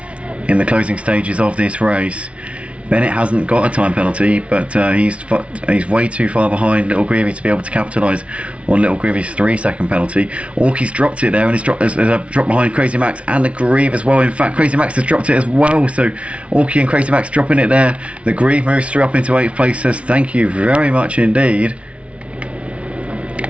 in the closing stages of this race. Bennett hasn't got a time penalty, but he's way too far behind Little Greavy to be able to capitalise on Little Greavy's 3-second penalty. Orky's dropped it there, and he's dropped behind Crazy Max and the Grieve as well. In fact, Crazy Max has dropped it as well, so Orky and Crazy Max dropping it there. The Grieve moves through up into 8th place, says thank you very much indeed.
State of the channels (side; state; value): left; late; 0.062 ms